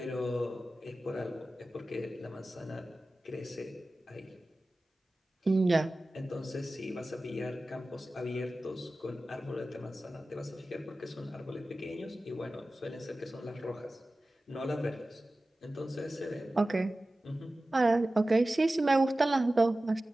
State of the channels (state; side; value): normal; both; correlation 0.96